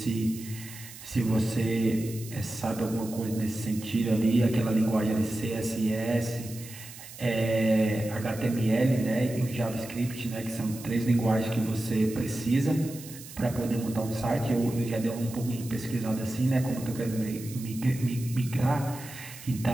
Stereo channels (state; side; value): noise; right; hiss, 15 dB below the sound